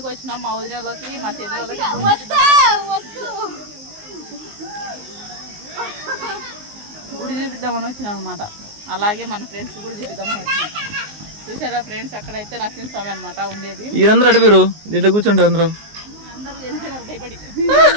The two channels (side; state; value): left; late; 19 ms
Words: వచ్చినాం మా వదిలేళ్ళకి, మా చెల్లెళ్ళకి. గుడి చూపిద్దామని వచ్చినాం అనమాట. అలాగే మన ఫ్రెండ్స్ గుడి చూపిద్దామని వచ్చినాం. చూసారా ఫ్రెండ్స్, అక్కడైతే నరసింహస్వామి అనమాట ఉండేది. వీరందరూ అడిగారు దీంట్లో కూర్చుంటారు. అందరూ వెళ్ళిపోయినారు భయపడి.